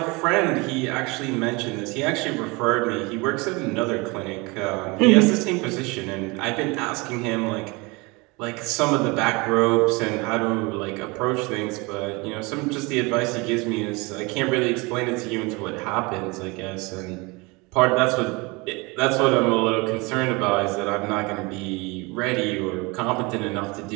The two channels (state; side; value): quieter; left; 26.2 dB